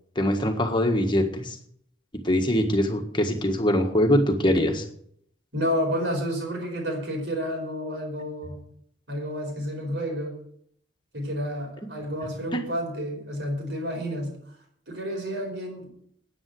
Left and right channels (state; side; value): normal; both; correlation 0.52